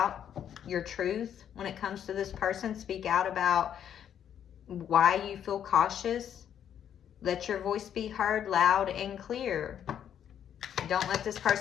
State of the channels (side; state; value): right; quieter; 9.4 dB